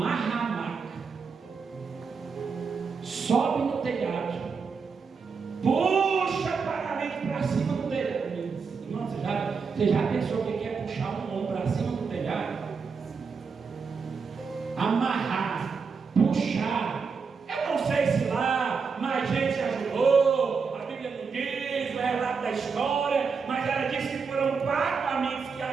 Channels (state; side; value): quieter; left; 5.4 dB